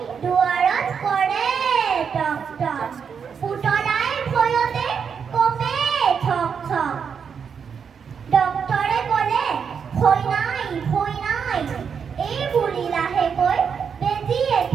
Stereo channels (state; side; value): quieter; left; 6.7 dB